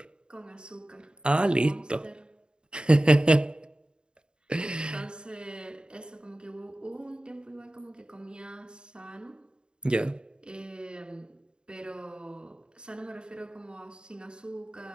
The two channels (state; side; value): late; left; 0.050 ms